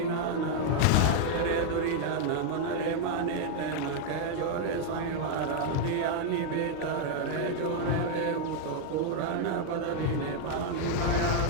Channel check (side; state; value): both; different; correlation 0.00